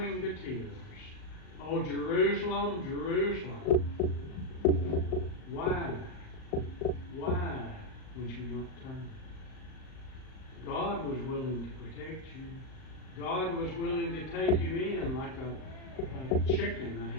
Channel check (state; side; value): late; right; 38 ms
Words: to tears. Oh, Jerusalem, Jerusalem, why would you not turn? God was willing to protect you. God was willing to take you in like a chicken, a